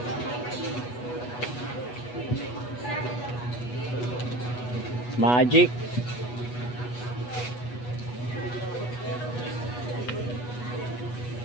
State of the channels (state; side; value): late; right; 8.2 ms